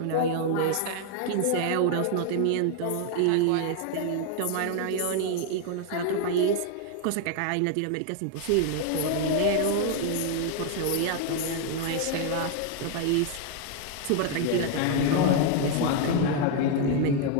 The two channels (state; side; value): different; both; correlation 0.00